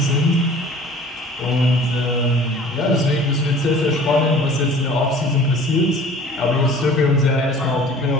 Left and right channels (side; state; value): both; normal; correlation 0.47